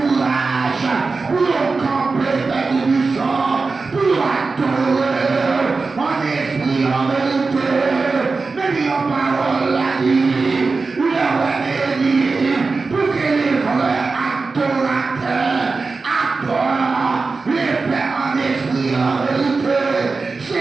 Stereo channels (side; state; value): left; quieter; 4.1 dB